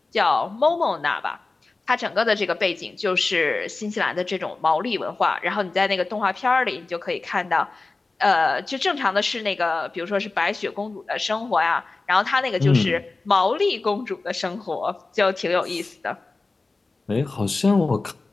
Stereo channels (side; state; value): right; quieter; 3.6 dB